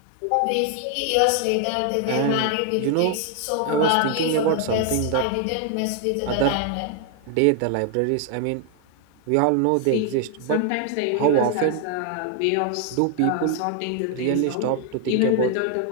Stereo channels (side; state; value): both; different; correlation 0.00